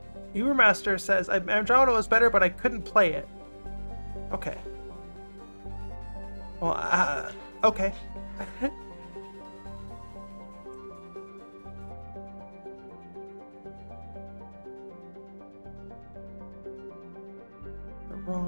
Ubermaster says, Andromeda was better, but I couldn't play it. Okay. Well, okay. The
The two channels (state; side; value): inverted; both; correlation -1.00